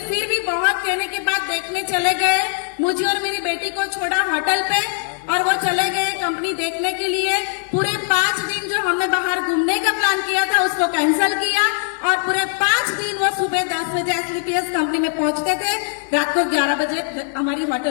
फिर भी बहुत कहने के बाद देखने चले गए। मुझे और मेरी बेटी को छोड़ा होटल पे और वो चले गए कंपनी देखने के लिए। पूरे 5 दिन जो हमने बाहर घूमने का प्लान किया था उसको कैंसिल किया, और पूरे 5 दिन वो सुबह 10 बजे एसलीपीएस कंपनी में पहुंचते थे, रात को 11 बजे हमारी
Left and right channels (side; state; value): right; silent; digital silence